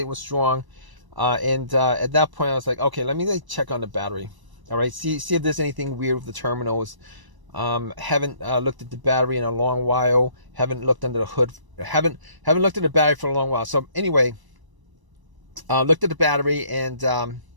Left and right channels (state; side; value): late; left; 1.0 ms